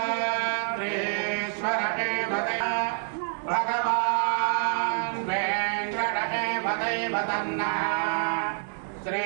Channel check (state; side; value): silent; left; 57 dB below the other